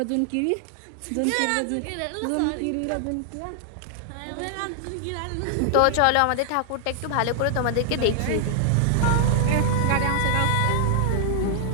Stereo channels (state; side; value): different; both; correlation -0.01